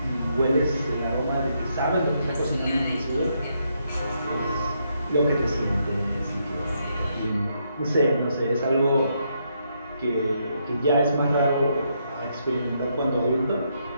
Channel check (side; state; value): both; inverted; correlation -0.77